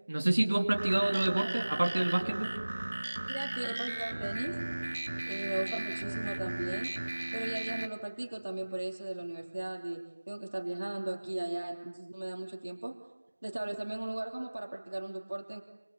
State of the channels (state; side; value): inverted; both; correlation -1.00